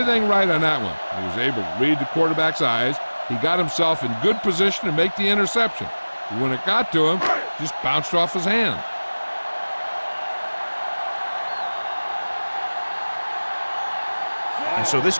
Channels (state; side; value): inverted; both; correlation -1.00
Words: right on that one. He was able to read the quarterback's eyes. He got himself in good position to make the interception. But when it got to him, it just bounced off his hand. And so this